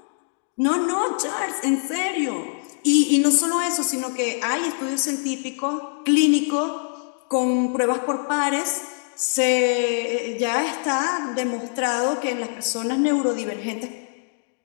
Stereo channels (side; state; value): right; silent; digital silence